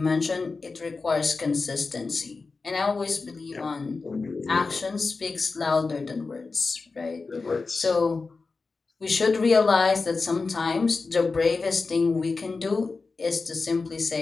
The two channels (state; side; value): quieter; right; 4.1 dB